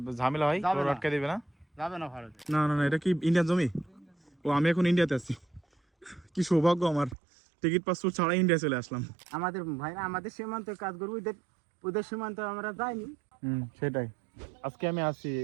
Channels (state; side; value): drops out; left; at 7.2 s